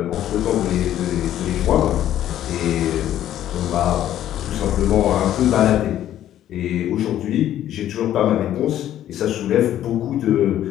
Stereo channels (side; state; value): right; quieter; 11.9 dB